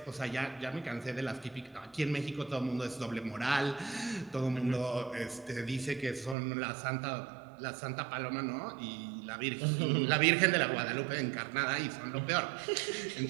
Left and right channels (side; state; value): left; drops out; at 6.4 s